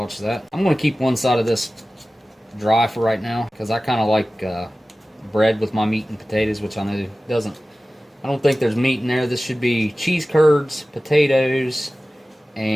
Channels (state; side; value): normal; both; correlation 0.96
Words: that. I'm going to keep one side of this dry for right now, because I kind of like bread with my meat and potatoes, which I know doesn't. I don't think there's meat in there. This should be cheese curds, potatoes,